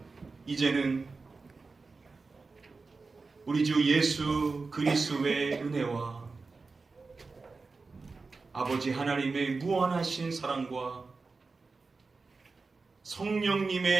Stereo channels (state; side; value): quieter; left; 4.1 dB